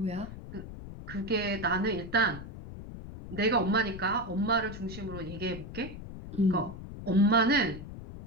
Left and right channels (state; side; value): noise; left; rumble, 12 dB below the sound